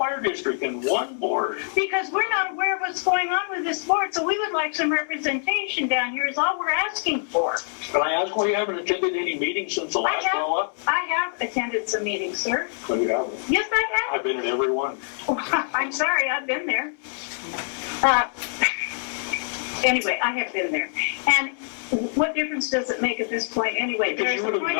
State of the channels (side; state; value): right; silent; 62 dB below the other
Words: district and one board. Because we're not aware of what's going on with this board, so we would like some representation down here is all we're asking for. Can I ask why you haven't attended any meetings since the last roll-up? I have attended some meetings, sir. No, you haven't. Yes, I I've been at every one. have. I'm sorry, I've been there. Anyway, I have been there. And what difference does it make at this point anyway? Because you There's would a have point